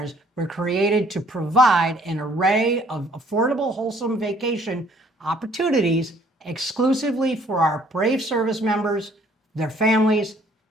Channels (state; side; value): normal; both; correlation 0.61